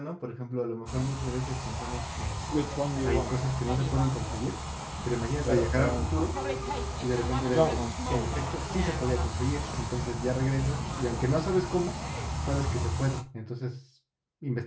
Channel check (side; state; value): both; identical; correlation 1.00